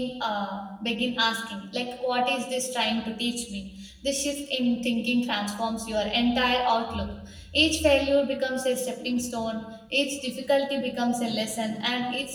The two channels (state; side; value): identical; both; correlation 1.00